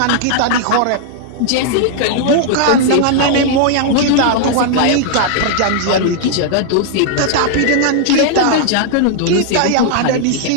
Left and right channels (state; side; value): different; both; correlation -0.01